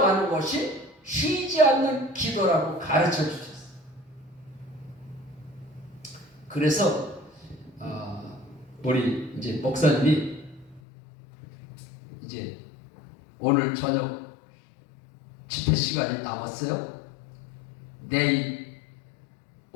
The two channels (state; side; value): drops out; right; at 10.8 s